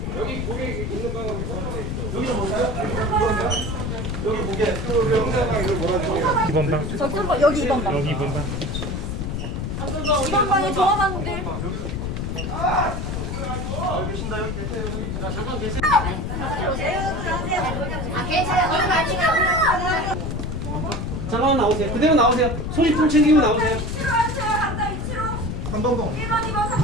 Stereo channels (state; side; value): noise; left; rumble, 3 dB below the sound